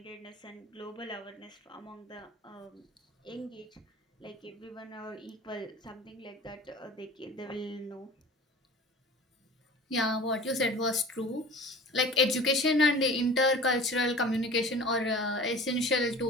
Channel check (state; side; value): normal; both; correlation 0.41